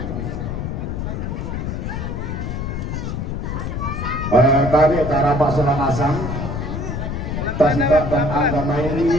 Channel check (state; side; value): noise; left; rumble, 4 dB below the sound